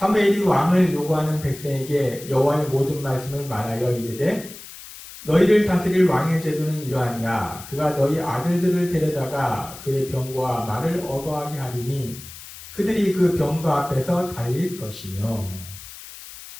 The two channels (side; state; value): left; noise; hiss, 15 dB below the sound